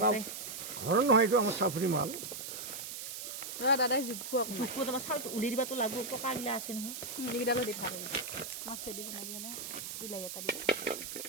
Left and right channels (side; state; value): right; noise; hiss, 7 dB below the sound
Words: ঘৰৰ নহয় এইটো আমাৰ চাফৰি মাল দাদাই জোখো তোমাৰ চাউলটো উলিয়াই দিবাতো লাগব পকাগিলা আছে নহয় এইকেইটা লৈ দি ভাল মাছে দিব লাগে ন বিলাহী এটা দিব